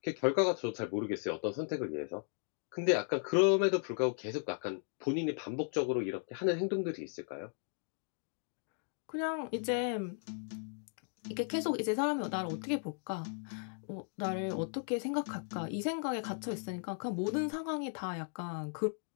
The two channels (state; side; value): silent; right; 54 dB below the other